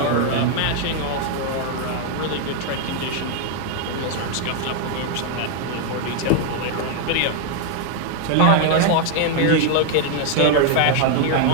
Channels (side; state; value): both; different; correlation 0.00